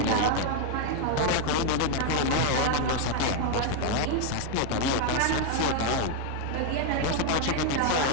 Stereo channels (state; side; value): different; both; correlation 0.01